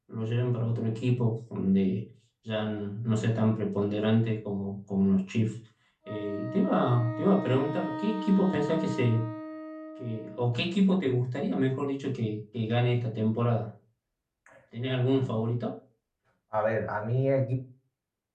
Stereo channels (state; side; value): identical; both; correlation 1.00